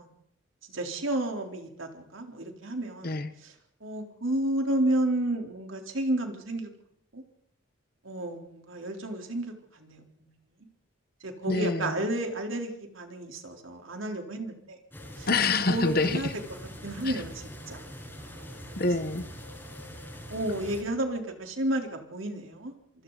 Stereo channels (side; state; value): both; normal; correlation 0.40